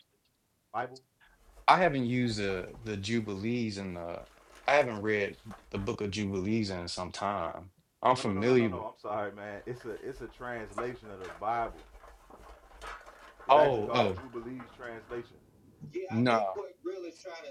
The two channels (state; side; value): identical; both; correlation 1.00